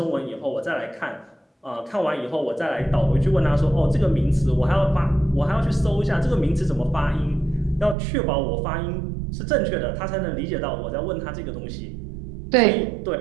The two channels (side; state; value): left; drops out; at 8.0 s